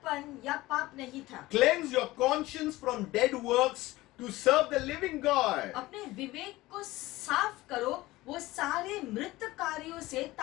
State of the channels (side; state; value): right; quieter; 18.6 dB